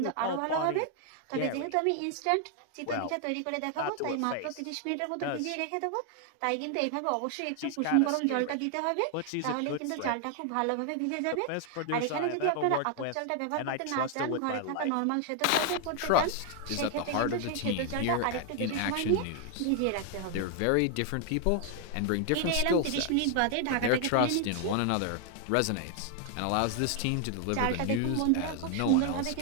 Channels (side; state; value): both; different; correlation 0.00